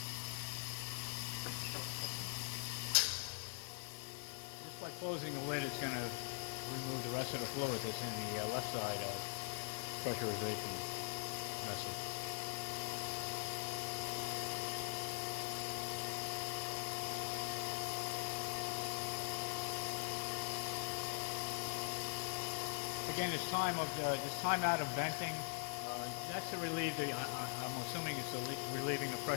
just by closing the lid. It's going to remove the rest of the fluid that's in the left side of pressurization vessel. Again, this time out of venting, that's to relieve the, I'm going to assuming it's relieving the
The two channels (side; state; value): right; quieter; 39.3 dB